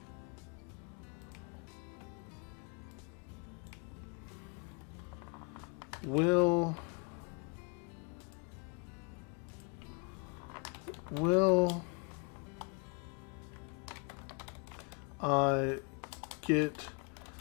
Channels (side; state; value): right; quieter; 34.8 dB